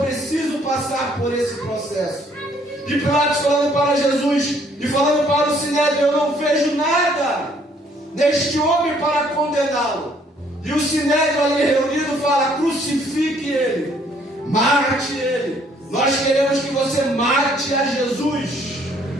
passar por esse processo. E Pilatos falando para Jesus e falando para o Sinédrio: eu não vejo nada neste homem para condená-lo. E o Sinédrio ali reunido fala: crucifique ele, mate ele. Nós queremos que você mate a Jesus.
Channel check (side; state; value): both; normal; correlation 0.64